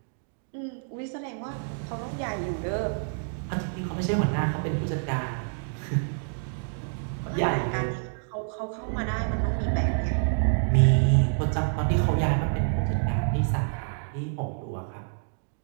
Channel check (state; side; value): silent; left; digital silence